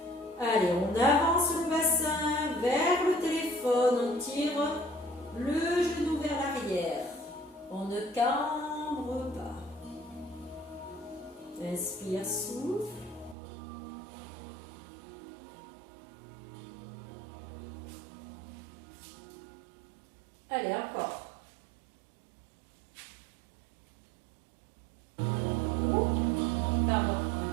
Allez, on avance le bassin vers le téléphone. On tire le genou vers l'arrière. On ne cambre pas. Inspire, souffle. Allez, encore.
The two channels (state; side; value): drops out; left; at 13.4 s